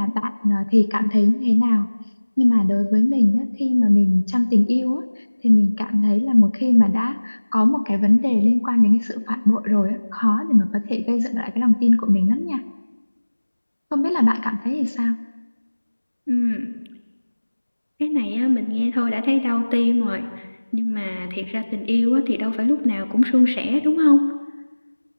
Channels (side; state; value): both; inverted; correlation -1.00